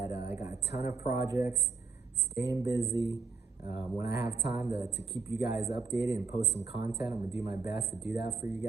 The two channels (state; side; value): quieter; left; 4.5 dB